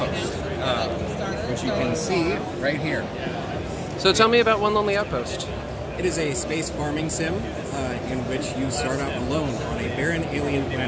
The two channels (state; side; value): identical; both; correlation 1.00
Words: which you can see right here. So tell me about One Lonely Outpost. It is a space farming sim in which you start out alone on a barren alien